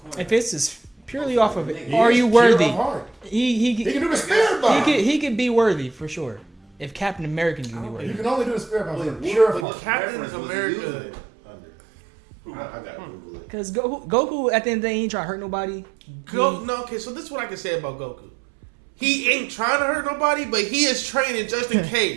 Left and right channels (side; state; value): left; drops out; at 9.7 s